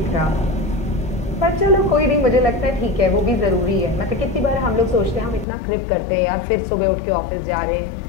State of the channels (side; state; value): right; drops out; at 5.5 s